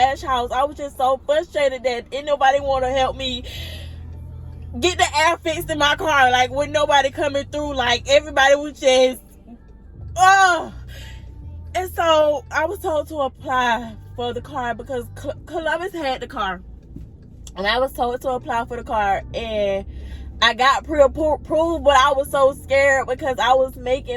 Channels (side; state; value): both; identical; correlation 1.00